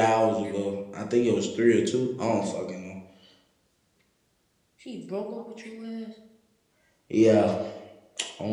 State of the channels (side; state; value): both; identical; correlation 1.00